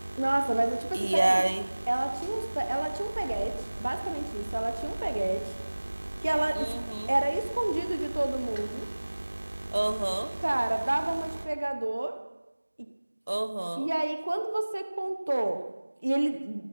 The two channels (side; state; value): both; inverted; correlation -1.00